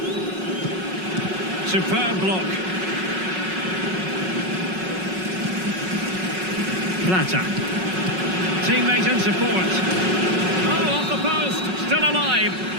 Superb block. Plata. Teammate in support. Oh, off the post. Still alive.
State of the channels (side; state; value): left; late; 5.4 ms